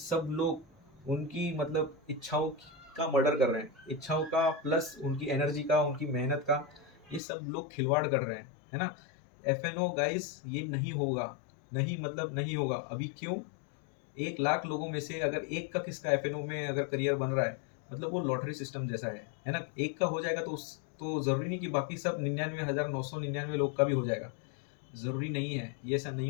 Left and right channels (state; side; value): drops out; right; at 7.2 s